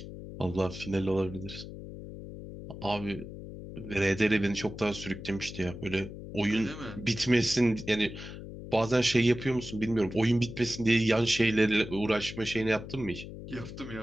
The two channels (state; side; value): noise; left; hum, 11 dB below the sound